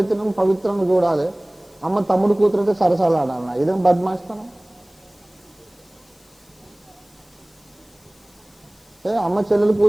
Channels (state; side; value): noise; left; hiss, 30 dB below the sound